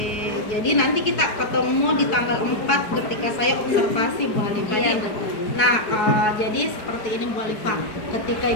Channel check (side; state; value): right; late; 4.7 ms